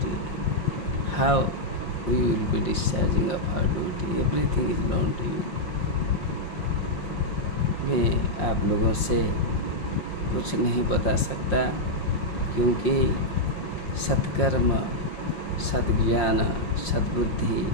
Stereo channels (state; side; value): late; right; 5.6 ms